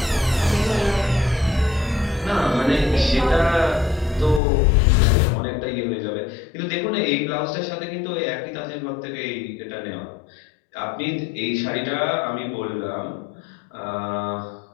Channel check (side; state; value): right; drops out; at 4.4 s